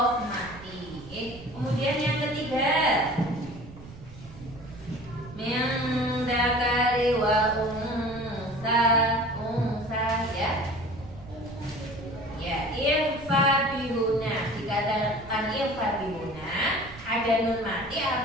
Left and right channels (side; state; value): right; noise; rumble, 17 dB below the sound